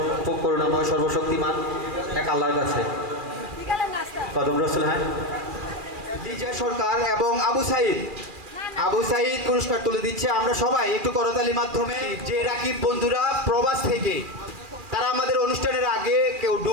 করুণাময় সর্বশক্তিমান এক আল্লাহর কাছে। কদম রাসূল। হ্যাঁ, বিজয় সরকার এবং আবু সাইদ পুরস্কার তুলে দিচ্ছে। আমরা সবাই একটু করতালির মাধ্যমে। যে রাকিব বন্ধুরা প্রবাস থেকে, তারা আমাদের অনুষ্ঠানের আগে কেউ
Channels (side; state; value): left; late; 2.4 ms